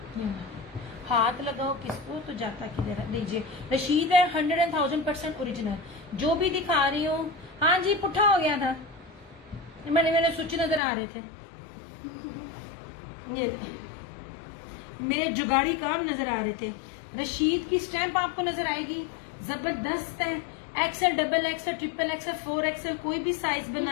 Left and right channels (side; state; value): right; drops out; at 10.8 s